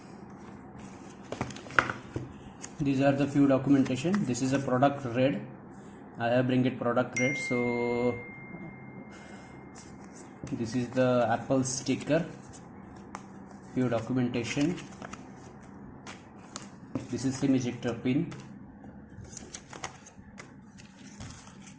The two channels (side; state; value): both; identical; correlation 1.00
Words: These are the few documentation. This is a product read. I have bring it product read. So this is the Apple sticker, few documentation. This is SIM ejector pin.